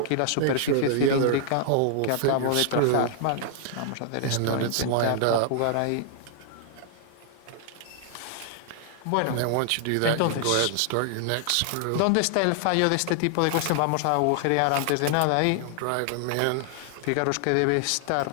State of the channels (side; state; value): both; different; correlation 0.00